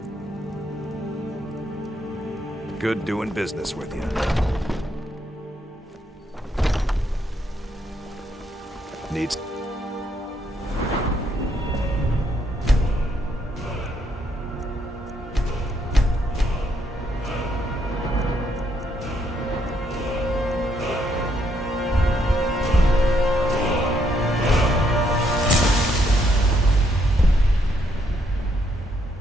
Good doing business with you. Needs...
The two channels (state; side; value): normal; both; correlation 0.74